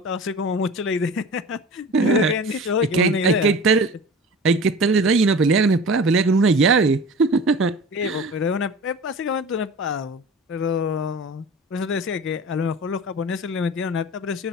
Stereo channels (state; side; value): normal; both; correlation 0.38